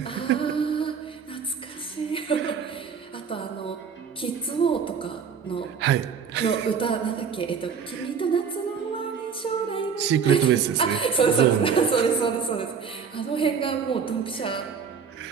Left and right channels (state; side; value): quieter; left; 6.5 dB